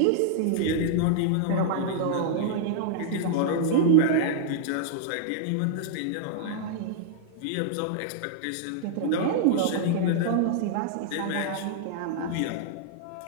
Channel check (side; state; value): both; different; correlation -0.01